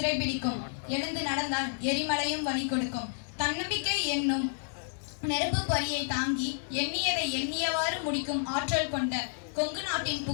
எழுந்து நடந்தால் எரிமலையும் வழி கொடுக்கும். தன்னம்பிக்கை என்னும் நெருப்பு பொறியை தாங்கி எண்ணியதை எண்ணியவாறு முடிக்கும் ஆற்றல் கொண்ட கொங்கு நாட்டின்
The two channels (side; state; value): right; silent; digital silence